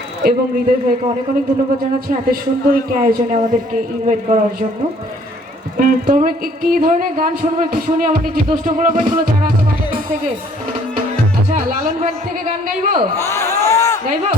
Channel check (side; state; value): both; normal; correlation 0.59